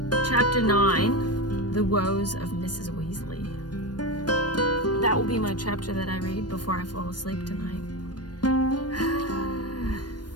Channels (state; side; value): late; right; 0.69 ms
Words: Chapter 9, The Woes of Mrs. Weasley. That will be my chapter that I read before I fall asleep tonight.